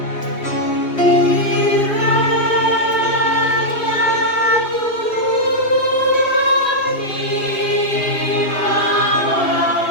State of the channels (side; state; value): right; late; 2.8 ms